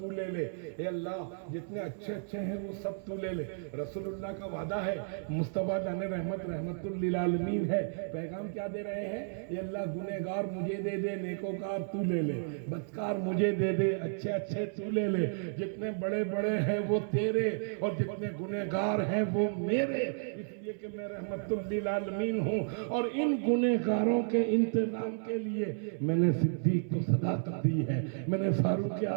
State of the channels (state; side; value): silent; left; 56 dB below the other